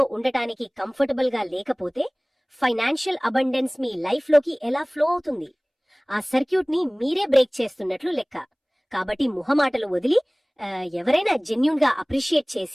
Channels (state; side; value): identical; both; correlation 1.00